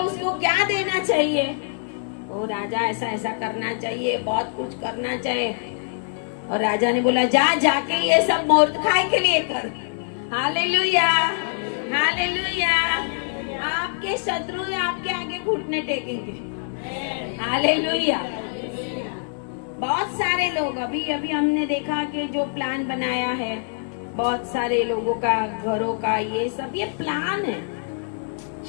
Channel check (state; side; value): silent; right; digital silence